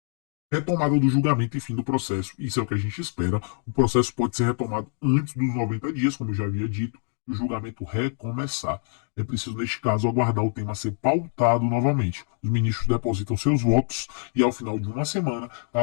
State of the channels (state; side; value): silent; right; 56 dB below the other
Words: Retomada do julgamento e fim do processo. Isso é o que a gente espera. O processo pode ser retomado antes dos 90 dias, como eu já havia dito, e o julgamento recomeçar. É preciso, neste caso, aguardar o tema ser pautado novamente. Os ministros depositam seus votos e, ao final de uma semana,